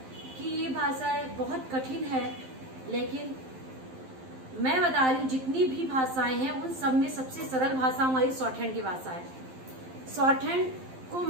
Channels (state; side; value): late; left; 12 ms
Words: कि ये भाषा बहुत कठिन है, लेकिन मैं बता रही हूँ जितनी भी भाषाएं हैं उन सब में सबसे सरल भाषा हमारी शॉर्ट हैंड की भाषा है। शॉर्ट हैंड को